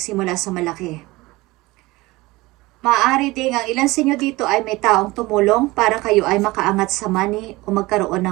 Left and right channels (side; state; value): left; quieter; 20.9 dB